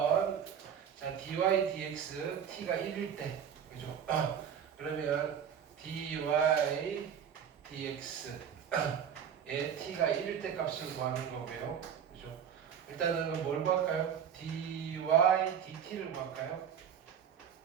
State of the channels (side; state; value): left; quieter; 8.3 dB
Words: 자, dy dx t가 1일 때. 그죠? 그러면 dy dx 에 t가 1일 때 값을 구하는 거고요. 그죠? 일단은 뭘 구할까요? dy dt를 구할까요?